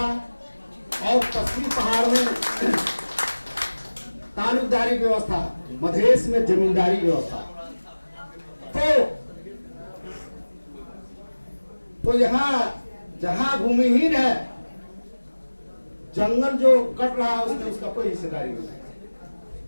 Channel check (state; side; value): inverted; both; correlation -1.00